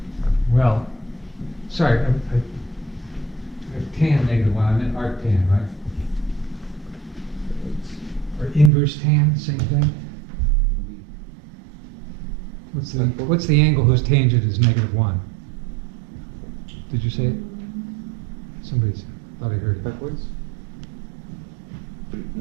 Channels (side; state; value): left; drops out; at 8.7 s